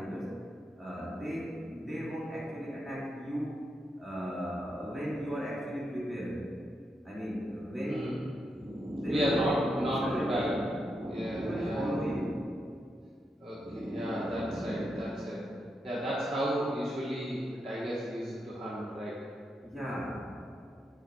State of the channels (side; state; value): both; normal; correlation 0.84